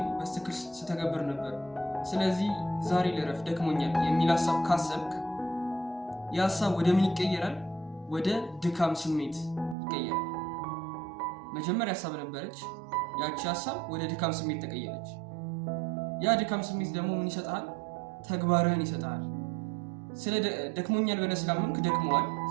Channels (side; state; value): left; drops out; at 9.8 s